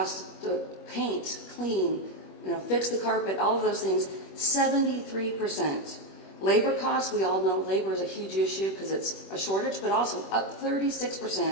to paint, clean, fix the carpet, all of those things, 73%. Labor costs, we all know labor is a huge issue because it's a shortage, but also up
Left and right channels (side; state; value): right; late; 21 ms